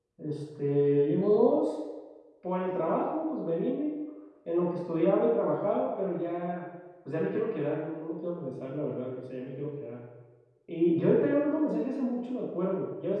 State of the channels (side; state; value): both; identical; correlation 1.00